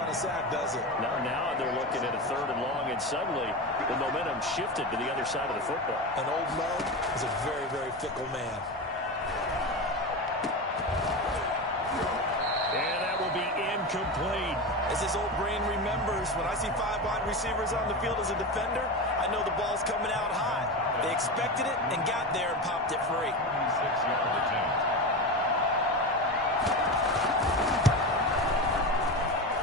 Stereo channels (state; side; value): normal; both; correlation 0.22